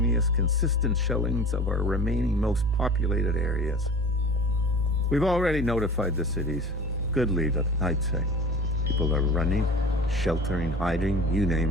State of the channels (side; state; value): both; normal; correlation 0.40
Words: consistent showings of our remaining most populated areas. We've already notified the cities. Good lead, I'd say. People are running, sheltering, hiding, you name